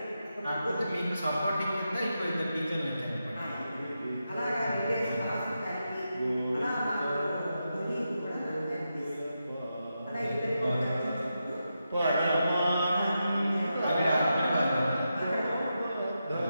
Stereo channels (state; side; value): inverted; both; correlation -0.87